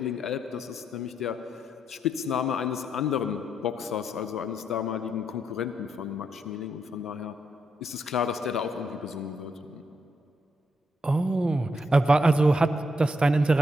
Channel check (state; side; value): normal; both; correlation 0.79